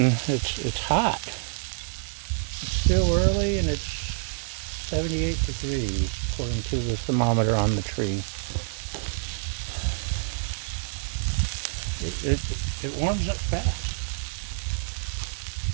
hot. It's still early and it's 78 degrees according to the thermometer on the tree. It warms up fast.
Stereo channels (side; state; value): left; silent; digital silence